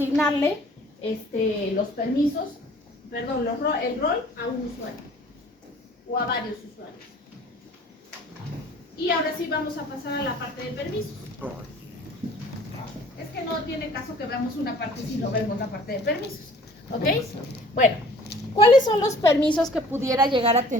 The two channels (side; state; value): both; normal; correlation 0.51